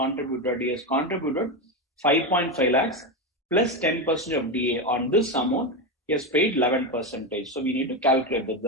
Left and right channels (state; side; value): normal; both; correlation 0.13